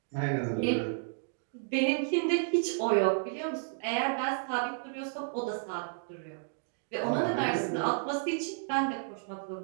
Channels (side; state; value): left; silent; digital silence